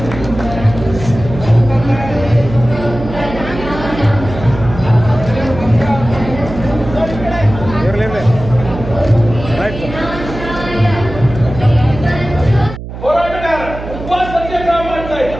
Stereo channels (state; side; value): noise; right; hum, 10 dB below the sound